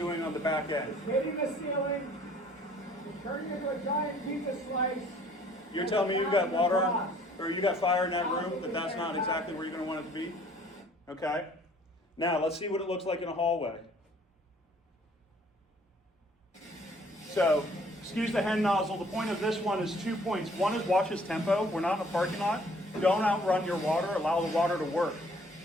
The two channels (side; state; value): both; normal; correlation 0.57